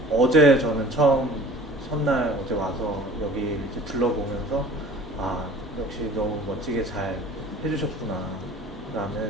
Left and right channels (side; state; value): both; normal; correlation 0.46